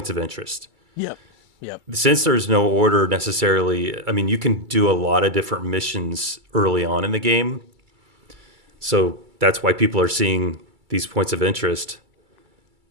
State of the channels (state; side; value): late; left; 2.3 ms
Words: of interest. Yep. Yep. Since there's no order necessarily, I mean, you can do a lot of different missions early on in the game. So that's why people are seeing these points of interest.